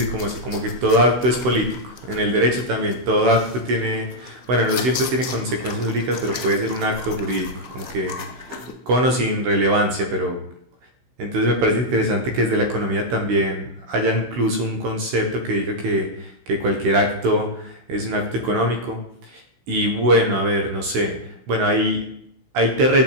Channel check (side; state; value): left; late; 16 ms